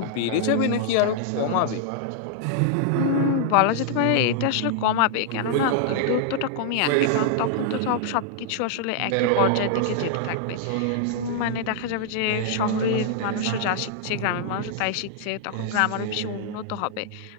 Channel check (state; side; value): different; both; correlation -0.01